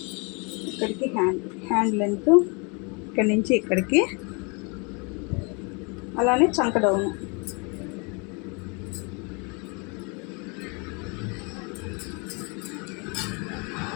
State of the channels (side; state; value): right; quieter; 31.8 dB